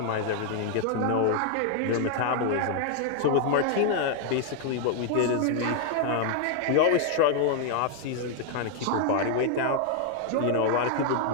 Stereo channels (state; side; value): different; both; correlation 0.00